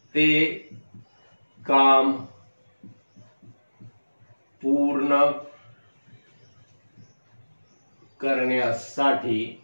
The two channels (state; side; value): inverted; both; correlation -1.00